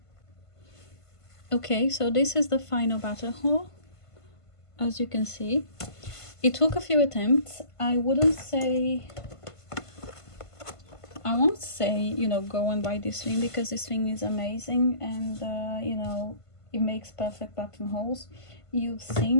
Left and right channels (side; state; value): right; late; 1.5 ms